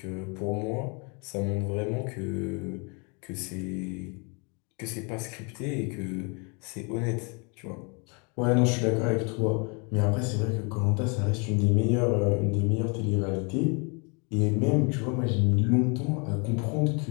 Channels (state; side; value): quieter; right; 33.5 dB